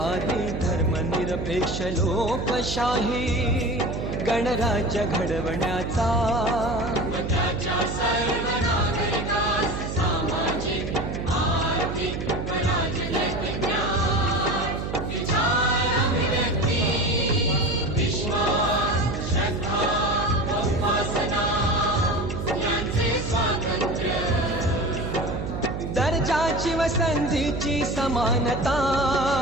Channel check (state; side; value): noise; right; hum, 5 dB below the sound